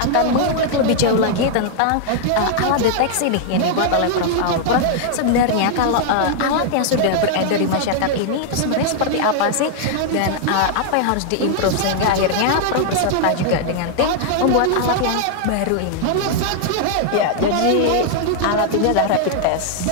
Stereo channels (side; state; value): both; different; correlation -0.01